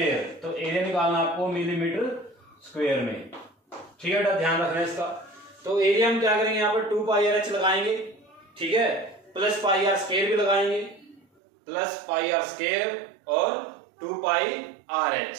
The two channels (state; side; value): drops out; left; at 11.2 s